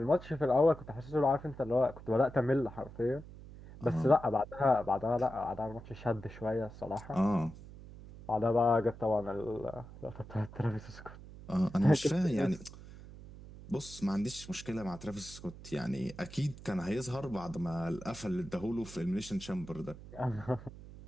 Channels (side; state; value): right; noise; hum, 16 dB below the sound